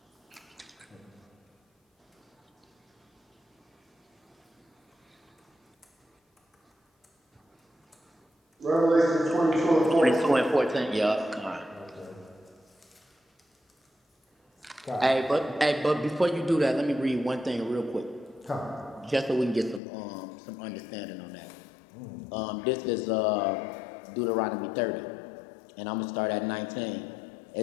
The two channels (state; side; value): drops out; right; at 19.8 s